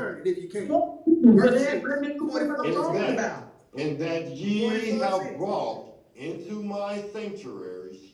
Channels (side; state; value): both; identical; correlation 1.00